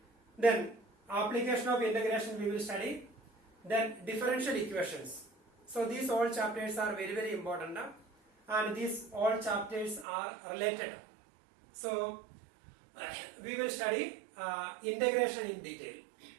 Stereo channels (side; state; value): left; drops out; at 10.1 s